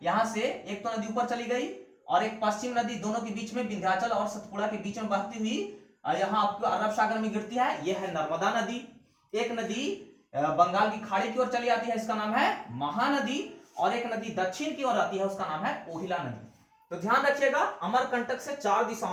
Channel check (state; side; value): identical; both; correlation 1.00